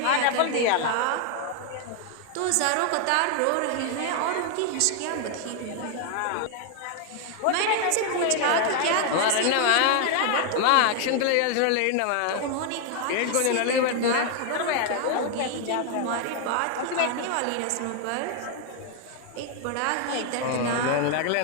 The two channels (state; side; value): different; both; correlation 0.00